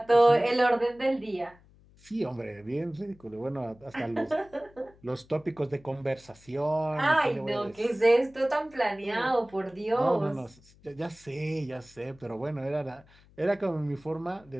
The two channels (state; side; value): noise; left; hum, 27 dB below the sound